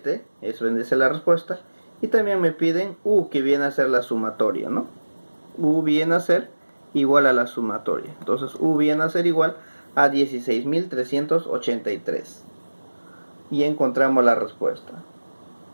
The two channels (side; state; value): both; inverted; correlation -1.00